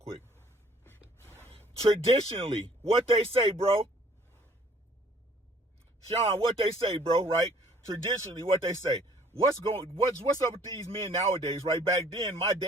Traditionally, what they say, bro. Sean, what they say, bro, right? Traditionally, what they say. What's up with these men nowadays, right? Back then, my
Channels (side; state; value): both; normal; correlation 0.57